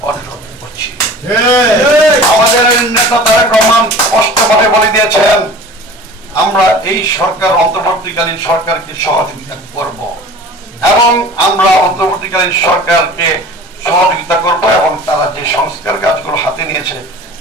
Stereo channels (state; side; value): normal; both; correlation 0.42